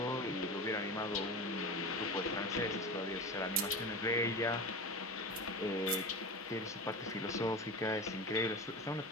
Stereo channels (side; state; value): both; normal; correlation 0.28